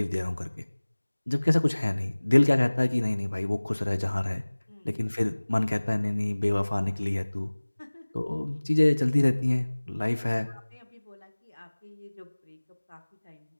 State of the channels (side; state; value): both; inverted; correlation -1.00